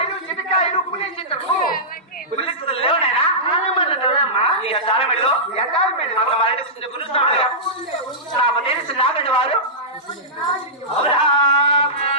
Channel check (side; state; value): both; normal; correlation -0.17